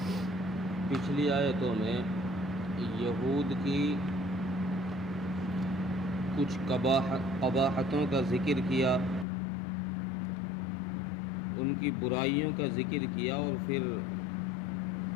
پچھلی آیتوں میں یہود کی کچھ قباحتوں کا ذکر کیا، ان کی برائیوں کا ذکر کیا، اور پھر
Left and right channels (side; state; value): right; drops out; at 9.2 s